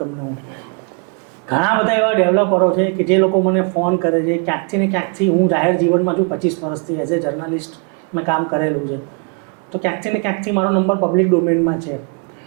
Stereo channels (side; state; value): left; quieter; 36.5 dB